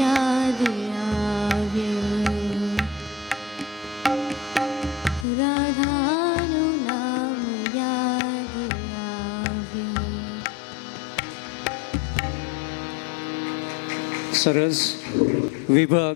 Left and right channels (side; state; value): right; drops out; at 5.2 s